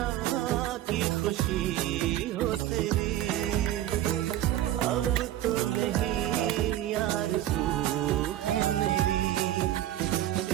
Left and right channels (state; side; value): quieter; left; 13.0 dB